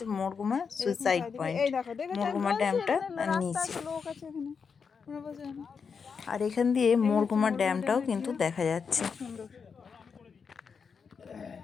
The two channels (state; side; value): quieter; right; 5.9 dB